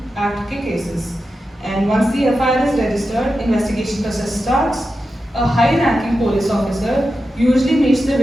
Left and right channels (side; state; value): both; normal; correlation 0.90